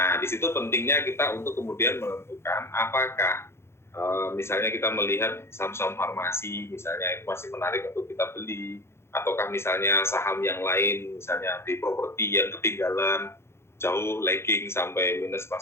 di situ pentingnya kita untuk kemudian menentukan apakah misalnya kita melihat saham-saham farmasi misalnya itu masih menarik untuk kita beli, ataukah misalnya saham yang lain misalnya di properti yang ketinggalan jauh lagging sampai minus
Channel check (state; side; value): late; right; 0.12 ms